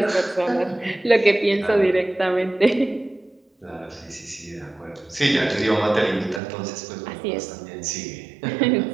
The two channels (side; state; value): left; drops out; at 6.4 s